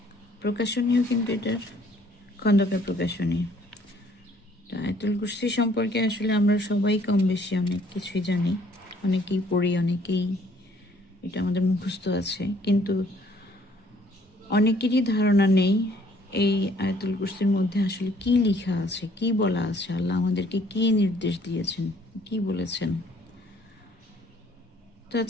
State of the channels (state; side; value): normal; both; correlation 0.61